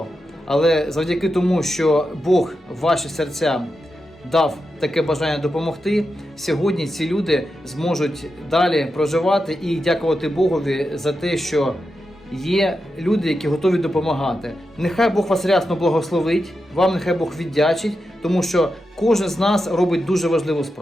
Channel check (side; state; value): both; normal; correlation 0.88